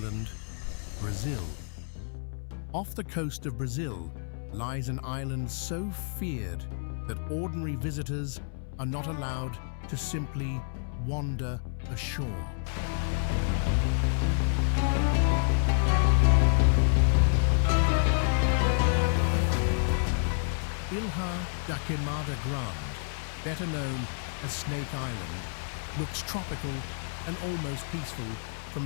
Brazil. Off the coast of Brazil lies an island so feared that ordinary visitors are not allowed to simply wander ashore. Ilha da Queimada Grande, better known as Snake Island, looks tropical and almost peaceful from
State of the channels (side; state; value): right; silent; 58 dB below the other